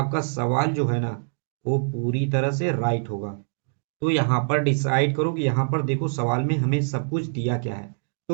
सवाल जो है ना वो पूरी तरह से राइट होगा। तो यहाँ पर डिसाइड करो कि यहाँ पर देखो सवाल में हमें सब कुछ दिया क्या है।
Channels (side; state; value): left; silent; digital silence